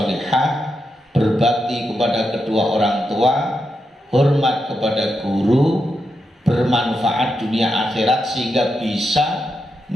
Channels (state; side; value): normal; both; correlation 0.85